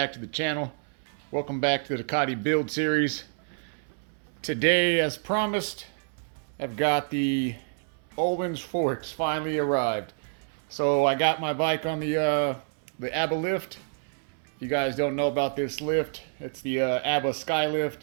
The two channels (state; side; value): silent; left; 59 dB below the other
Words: to the channel. Welcome back to the Ducati build series. Today, as promised, I've got the Ohlins forks finally arrived. So I got my bike on the ABBA lift. If you guys don't know about this lift, it's the ABBA Skylift.